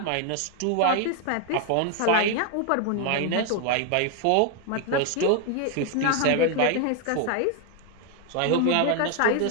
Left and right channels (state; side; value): different; both; correlation 0.01